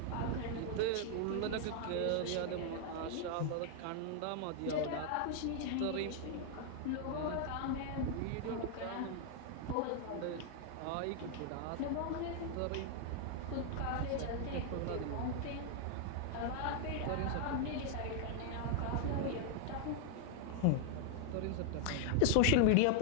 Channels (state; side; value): different; both; correlation 0.00